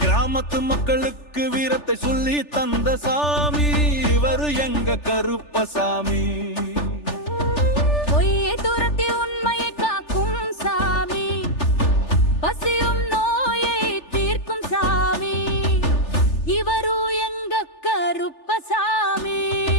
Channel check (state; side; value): late; right; 3.4 ms